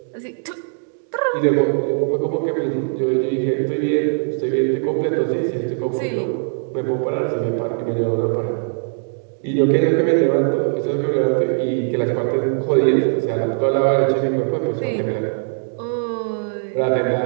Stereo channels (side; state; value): left; silent; digital silence